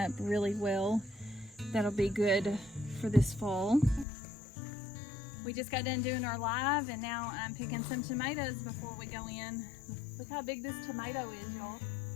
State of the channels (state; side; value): drops out; right; at 4.0 s